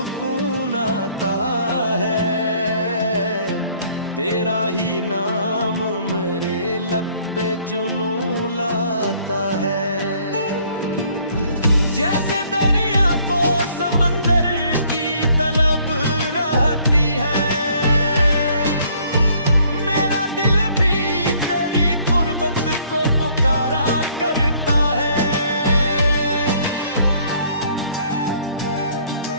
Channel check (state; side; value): inverted; both; correlation -0.61